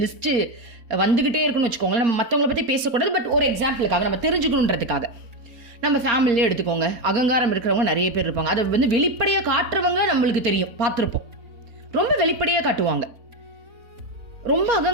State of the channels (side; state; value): left; late; 4.3 ms